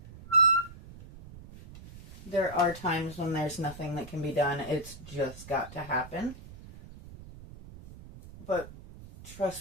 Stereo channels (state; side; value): noise; right; rumble, 17 dB below the sound